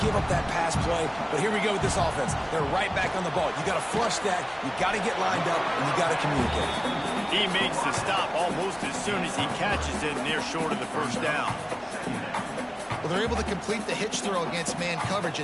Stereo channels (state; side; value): identical; both; correlation 1.00